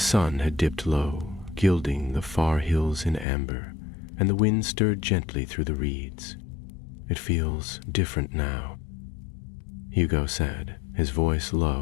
had dipped low, gilding the far hills in amber, and the wind stirred gently through the reeds. "It feels different now," Hugo said, his voice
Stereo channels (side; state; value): right; drops out; at 3.2 s